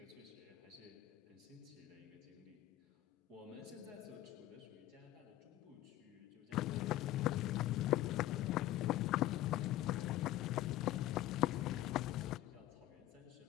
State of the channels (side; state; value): right; quieter; 14.5 dB